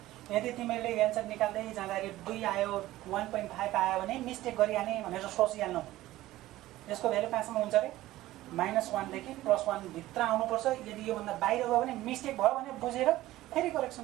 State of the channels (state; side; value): quieter; left; 16.0 dB